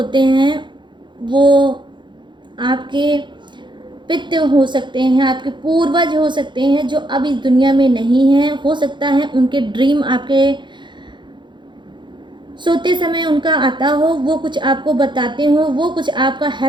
हैं वो आपके पितृ हो सकते हैं, आपके पूर्वज हो सकते हैं जो अब इस दुनिया में नहीं हैं। हो सकता है उनके ड्रीम आपके सोते समय उनका आता हो, वो कुछ आपको बताते हो, वो कुछ आपका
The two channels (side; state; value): left; late; 0.23 ms